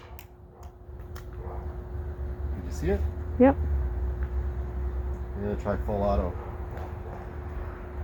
Did you see it? Yep. I'm gonna try full auto.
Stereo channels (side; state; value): both; identical; correlation 1.00